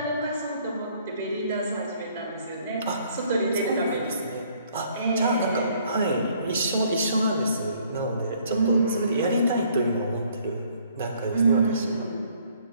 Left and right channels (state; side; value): inverted; both; correlation -0.62